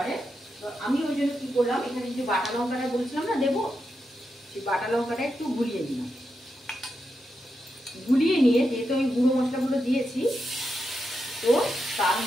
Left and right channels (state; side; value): normal; both; correlation 0.86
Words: তো আমি ওই জন্য কী করলাম, এখানে যে বাটা লঙ্কাটা বলছিলাম না দেবো, সেই বাটা লঙ্কাটা একটু গুলিয়ে দিলাম। গুলিয়ে নিয়ে যেহেতু আমি গুঁড়ো মশলাগুলো দিয়েছি, তো তার